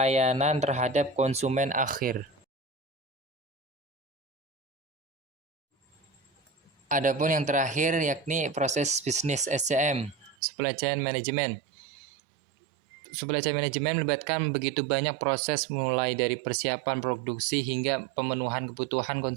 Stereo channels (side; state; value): left; drops out; at 10.4 s